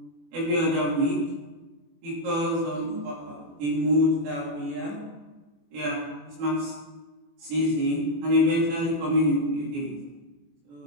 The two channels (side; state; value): left; late; 24 ms